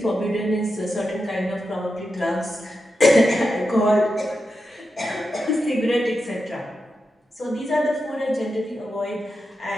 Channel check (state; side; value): normal; both; correlation 0.89